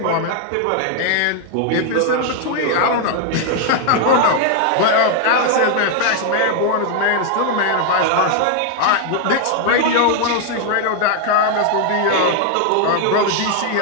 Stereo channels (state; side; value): different; both; correlation 0.00